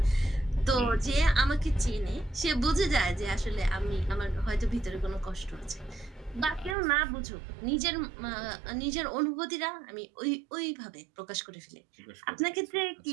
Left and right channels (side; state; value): left; drops out; at 6.8 s